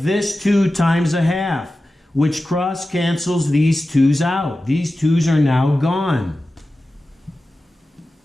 2 times a half, which cross cancels these 2's out. These 2's are now gone.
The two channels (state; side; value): normal; both; correlation 0.94